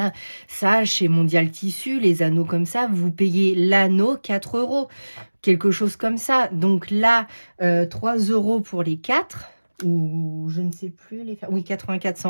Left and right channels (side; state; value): both; inverted; correlation -1.00